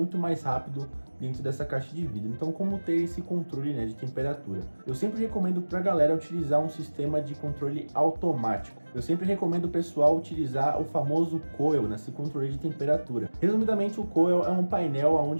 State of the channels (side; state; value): both; inverted; correlation -1.00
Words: mais rápido dentro dessa caixa de vidro. Então, como ter esse controle, né, de temperatura? Eu sempre recomendo para a galera utilizar um sistema de controle automático. Eu sempre recomendo o pessoal utilizar o famoso coil nesse controle de temperatura. Resumidamente, o coil é um painel